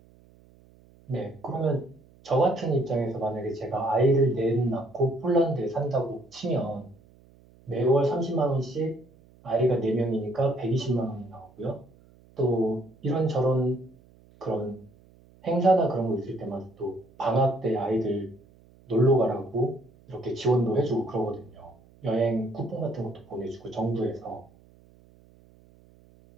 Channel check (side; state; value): right; noise; hum, 27 dB below the sound